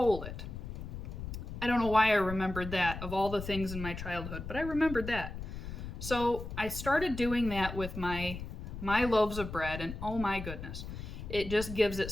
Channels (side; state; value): left; noise; rumble, 8 dB below the sound